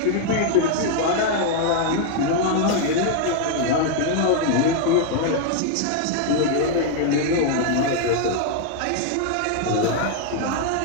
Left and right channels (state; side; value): different; both; correlation 0.00